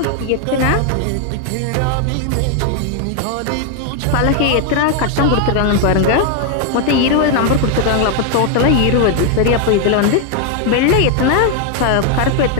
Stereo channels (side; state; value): both; different; correlation 0.00